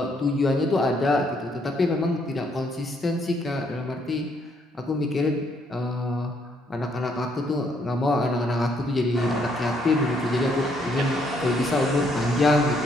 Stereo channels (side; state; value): both; normal; correlation 0.71